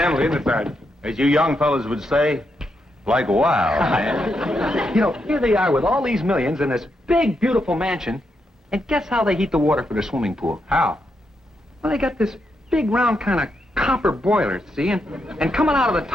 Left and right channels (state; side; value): normal; both; correlation 0.82